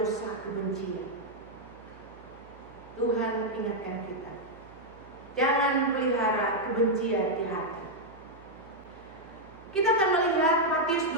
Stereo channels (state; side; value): noise; right; hum, 22 dB below the sound